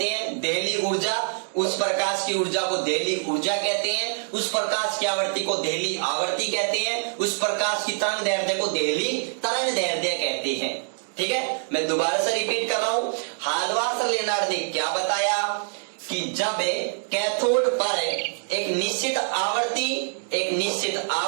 हैं? देहली ऊर्जा। उस प्रकाश की ऊर्जा को देहली ऊर्जा कहते हैं, उस प्रकाश की आवृत्ति को देहली आवृत्ति कहते हैं, उस प्रकाश की तरंग दैर्ध्य को देहली तरंग दैर्ध्य कहते हैं। ठीक है, मैं दोबारा से रिपीट कर रहा हूं। हाल्वार्स लेनार्ड ने क्या बताया कि जब कैथोड पर एक निश्चित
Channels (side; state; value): left; silent; digital silence